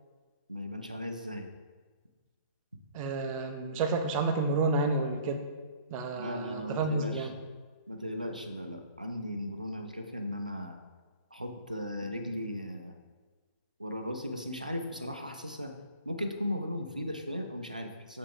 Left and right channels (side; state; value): both; inverted; correlation -0.51